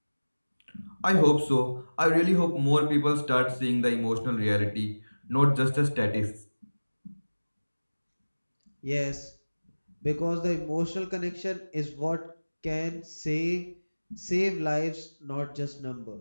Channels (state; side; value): inverted; both; correlation -1.00